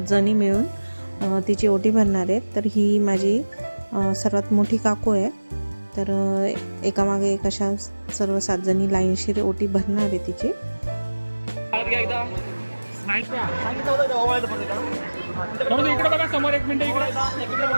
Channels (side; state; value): both; inverted; correlation -1.00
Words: जणी मिळून तिची ओटी भरणार आहेत. तर ही माझी सर्वात मोठी काकू आहे. तर एकामागे एक अशा सर्व 7 जणी लाईनशीर ओटी भरणार आहे तिची. इकडे बघा समोर, एक मिनिट इकडे